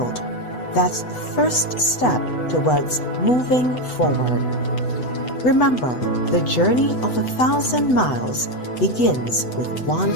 That's the first step towards moving forward. Remember, the journey of 1,000 miles begins with one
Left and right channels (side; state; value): right; late; 8.0 ms